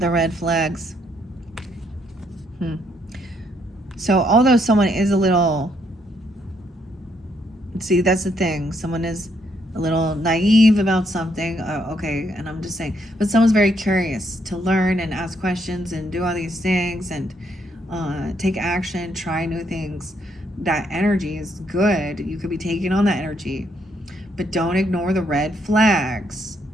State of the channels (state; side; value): normal; both; correlation 0.73